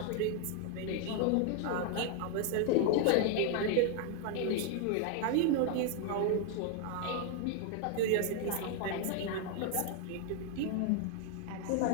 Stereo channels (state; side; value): different; both; correlation 0.00